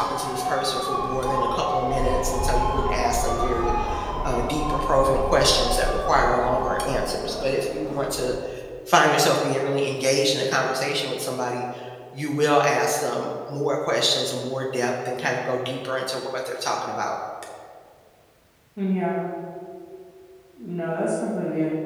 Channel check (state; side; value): identical; both; correlation 1.00